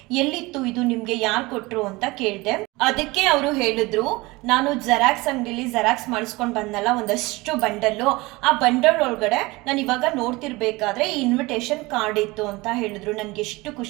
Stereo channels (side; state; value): left; quieter; 22.5 dB